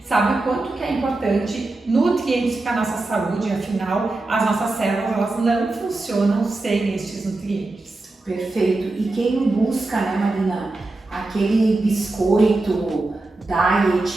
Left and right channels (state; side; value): quieter; left; 3.1 dB